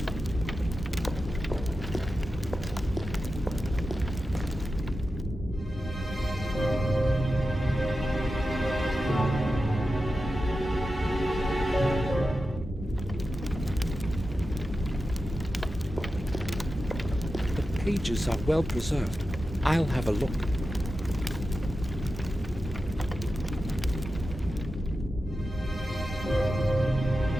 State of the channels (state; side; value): normal; both; correlation 0.92